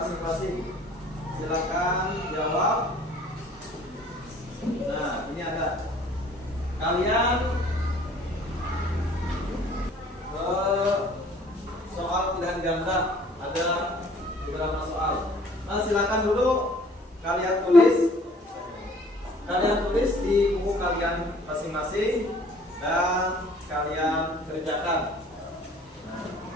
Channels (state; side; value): normal; both; correlation 0.54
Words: Silakan jawab. Nah, ini ada. Kalian soal pilihan ganda ada beberapa soal. Nah, silakan dulu kalian tulis. Kalian tulis di buku kalian masing-masing dan kalian kerjakan.